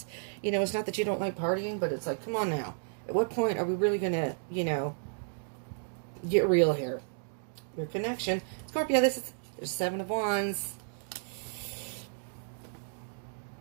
You know, it's not that you don't like partying, but it's like, come on now. At what point are we really going to, you know, get real here? Your connection. Scorpio, there's Seven of Wands.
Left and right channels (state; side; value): silent; left; digital silence